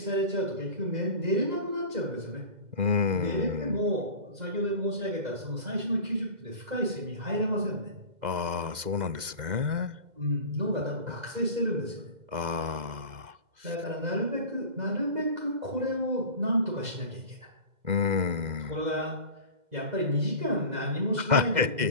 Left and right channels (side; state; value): left; late; 2.0 ms